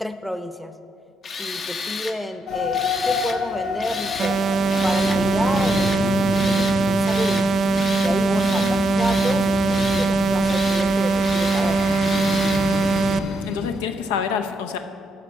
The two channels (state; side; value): normal; both; correlation 0.80